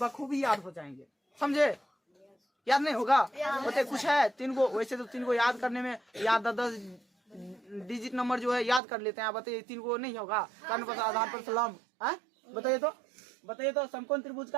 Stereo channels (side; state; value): left; drops out; at 8.8 s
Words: याद हो जाएंगे, समझे। याद नहीं होगा? बताइए कुछ है 3 को, वैसे तो 3 को याद करने में याद 10 डिजिट नंबर जो है याद कर लेते हैं। बताइए 3 को नहीं होगा? कर्ण प्लस आधार प्लस लंब, बताइए तो, बताइए तो, समकोण त्रिभुज